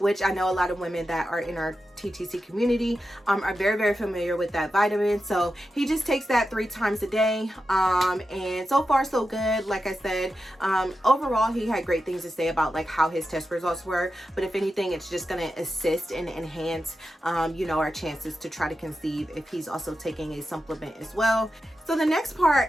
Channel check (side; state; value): both; normal; correlation 0.90